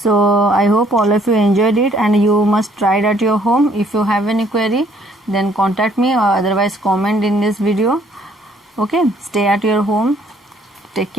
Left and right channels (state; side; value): normal; both; correlation 0.63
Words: I hope all of you enjoyed it and you must try it at your home. If you have any query, then contact me or otherwise comment in this video. Okay, stay at your home. Take